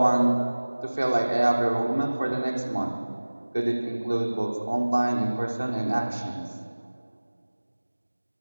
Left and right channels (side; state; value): both; inverted; correlation -1.00